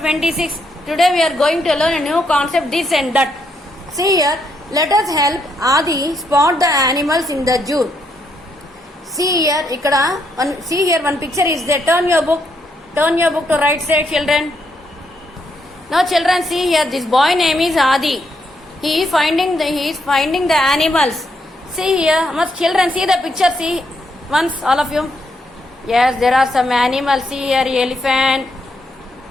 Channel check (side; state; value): both; normal; correlation 0.77